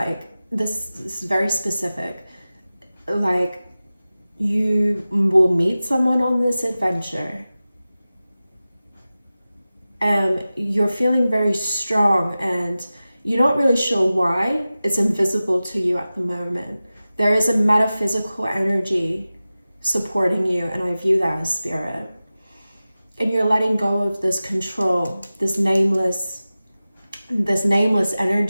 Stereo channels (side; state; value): both; inverted; correlation -0.96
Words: this is very specific. Like, you will meet someone on this adventure and you're feeling very strong and you're not really sure why. It's invisible to you at the moment. There is a metaphysical energy supporting you, and I view that as spirit. And you're letting go of this control, this nameless